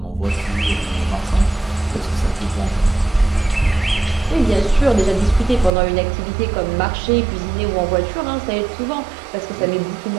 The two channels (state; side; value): drops out; left; at 5.7 s